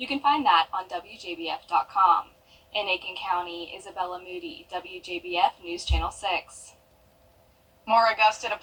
you can find that on WJBF.com. In Aiken County, Isabella Moody, WJBF News Channel 6. More Augusta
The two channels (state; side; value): identical; both; correlation 1.00